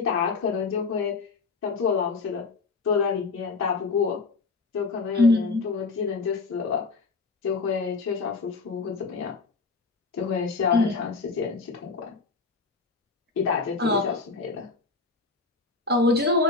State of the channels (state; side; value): quieter; right; 4.1 dB